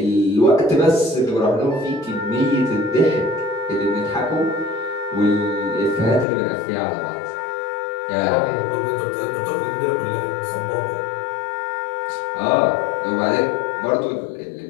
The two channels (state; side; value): drops out; right; at 6.2 s